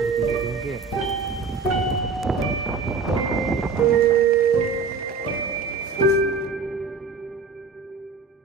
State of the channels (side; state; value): left; quieter; 4.7 dB